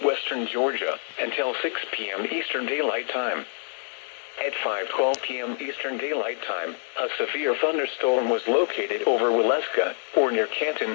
Georgia, until 6 p.m. Eastern Daylight Time. At 5:12 p.m. Eastern Daylight Time, a severe thunderstorm was located over Waleska, or near Canton,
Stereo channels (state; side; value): silent; right; digital silence